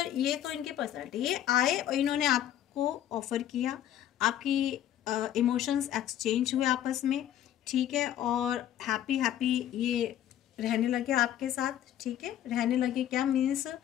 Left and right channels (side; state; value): right; quieter; 11.4 dB